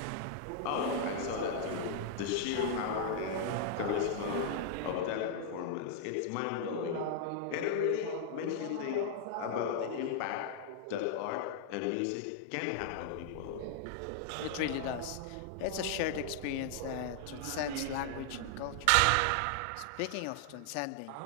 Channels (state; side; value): different; both; correlation -0.01